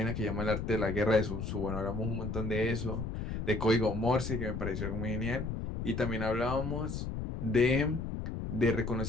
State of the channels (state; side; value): noise; left; rumble, 4 dB below the sound